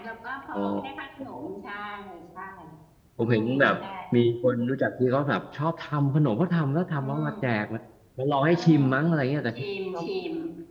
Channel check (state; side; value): identical; both; correlation 1.00